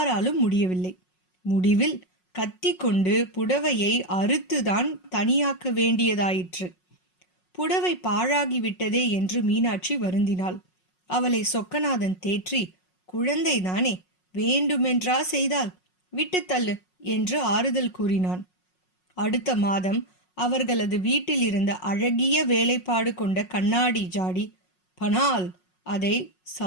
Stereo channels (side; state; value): right; late; 5.5 ms